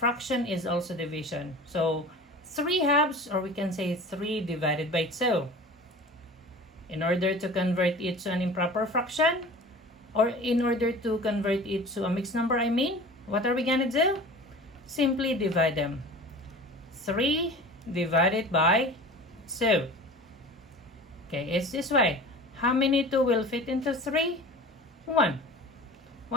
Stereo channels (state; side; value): normal; both; correlation 0.39